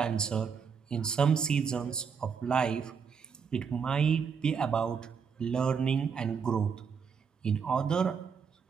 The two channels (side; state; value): left; quieter; 6.3 dB